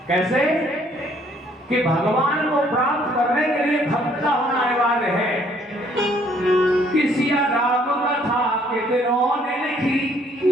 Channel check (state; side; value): normal; both; correlation 0.63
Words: कैसे कि भगवान को प्राप्त करने के लिए भक्त का होना अनिवार्य है। किसी राम कथा कितनों ने लिखी,